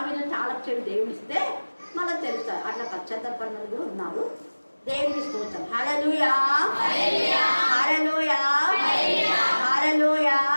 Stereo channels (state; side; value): inverted; both; correlation -1.00